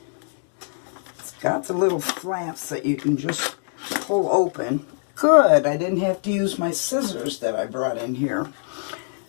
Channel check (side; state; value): right; silent; digital silence